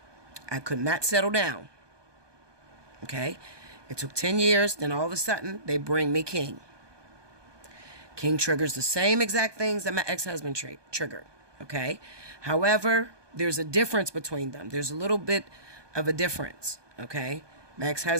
I could not settle down. Okay? It took 10 years. Then all of a sudden, they bring me King. King triggers the same exact things that my ex-husband triggered. Okay? However, there's a difference between them. There's a little bit of a difference. Okay? My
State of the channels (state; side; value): late; left; 1.2 ms